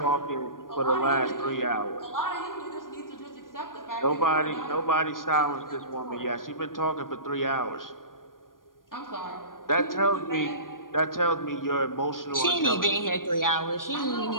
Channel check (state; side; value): late; right; 0.90 ms